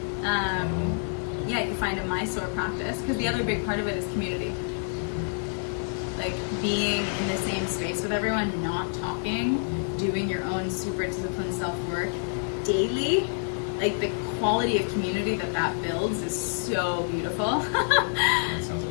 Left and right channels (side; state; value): right; silent; digital silence